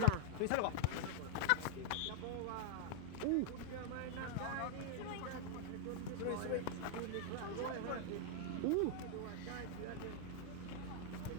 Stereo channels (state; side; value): different; both; correlation 0.00